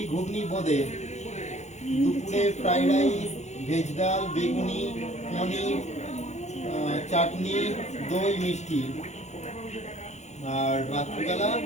ঘুগনি বোঁদে। দুপুরে ফ্রাইড রাইস ভেজ ডাল বেগুনি পনির চাটনি দই মিষ্টি। আর রাত্রিবেলা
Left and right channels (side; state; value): right; late; 0.33 ms